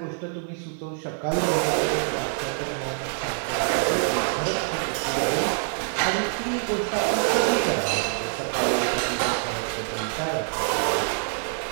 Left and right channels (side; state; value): left; silent; digital silence